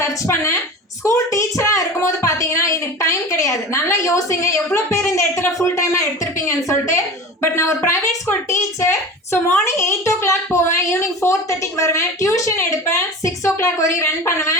சர்ச் பண்ணேன். ஸ்கூல் டீச்சராக இருக்கும்போது பார்த்தீங்கன்னா எனக்கு டைம் கிடையாது. நல்லா யோசிங்க எவ்வளோ பேர் இந்த இடத்துல ஃபுல் டைமாக எடுத்திருப்பீங்கன்னு சொல்லிட்டு. பட் நான் ஒரு private school teacher. So morning 8 o'clock போவேன், ஈவினிங் 4:30 வருவேன், டியூஷன் எடுப்பேன், 6 o'clock வரையும் ரன்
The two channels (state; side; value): normal; both; correlation 0.34